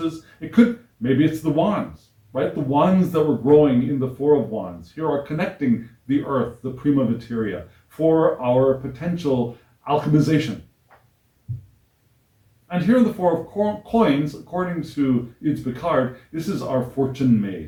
Maybe it's the wands, right? The wands that were growing in the Four of Wands here are connecting the earth, the prima materia, for our potential alchemization. And here in the Four of Coins, according to Ides Picard, this is our fortune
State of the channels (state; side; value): identical; both; correlation 1.00